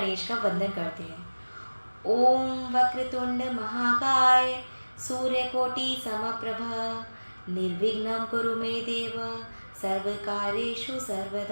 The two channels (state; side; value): inverted; both; correlation -1.00